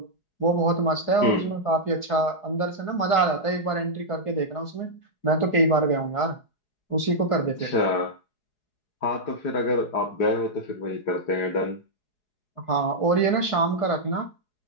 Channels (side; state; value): right; late; 4.8 ms